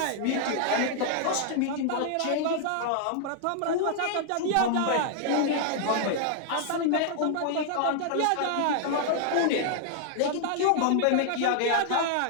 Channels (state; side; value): different; both; correlation 0.00